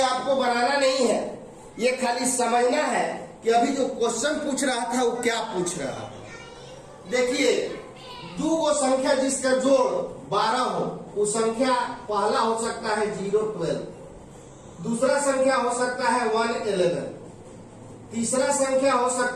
आपको बनाना नहीं है, ये खाली समझना है कि अभी जो क्वेश्चन पूछ रहा था वो क्या पूछ रहा था। देखिए दो वो संख्या जिसका जोड़ 12 हो, वो संख्या पहला हो सकता है 0 12, दूसरा संख्या हो सकता है 1 11, तीसरा संख्या हो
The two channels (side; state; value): both; identical; correlation 1.00